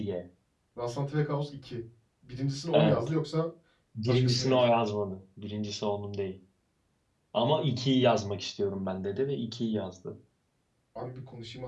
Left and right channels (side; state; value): both; identical; correlation 1.00